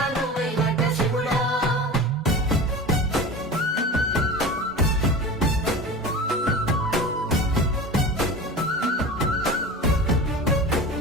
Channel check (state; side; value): normal; both; correlation 0.33